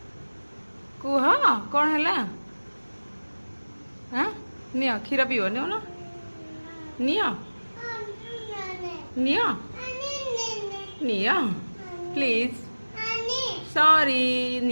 कुह कौन है हाँ नियो क्षीर पीव नियो ना neo neo neo please sorry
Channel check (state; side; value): inverted; both; correlation -1.00